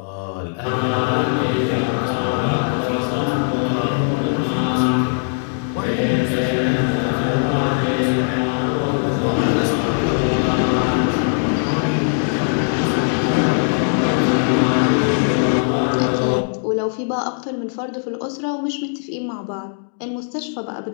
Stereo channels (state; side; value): silent; right; digital silence